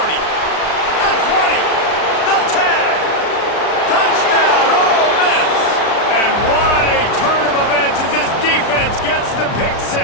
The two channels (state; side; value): late; right; 36 ms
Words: 20. The 10. Touchdown, Ole Miss. And what a turn of events as this defense gets the pick